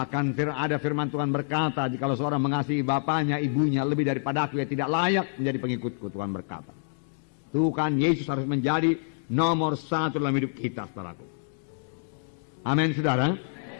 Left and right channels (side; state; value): right; silent; digital silence